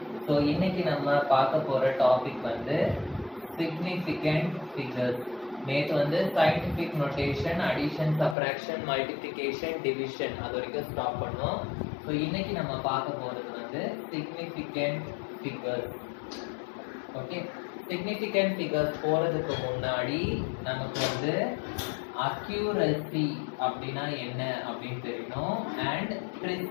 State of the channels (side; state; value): right; drops out; at 8.3 s